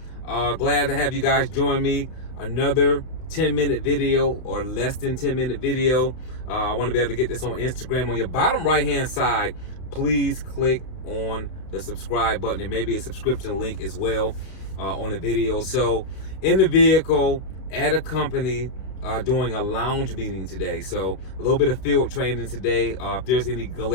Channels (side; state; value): right; late; 31 ms